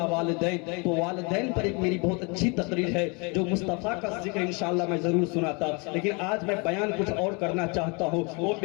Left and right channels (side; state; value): right; quieter; 31.3 dB